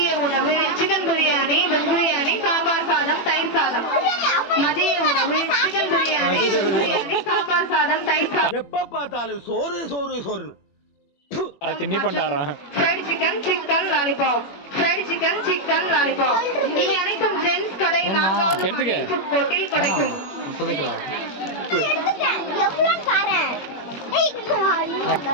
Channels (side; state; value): right; late; 21 ms